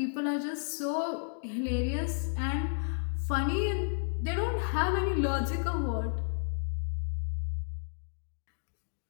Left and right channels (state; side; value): silent; right; digital silence